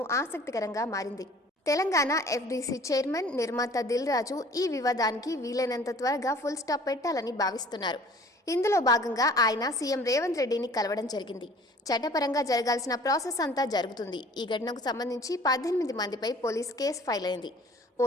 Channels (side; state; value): both; normal; correlation 0.50